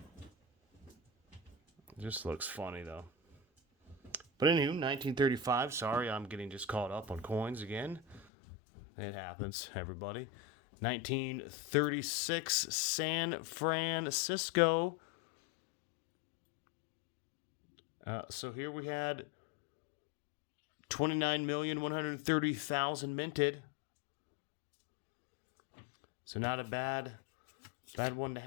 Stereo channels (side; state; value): right; drops out; at 8.2 s